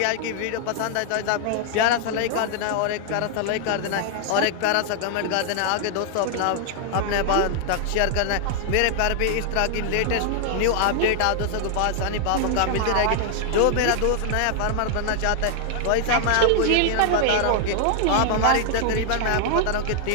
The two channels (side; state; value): both; different; correlation 0.00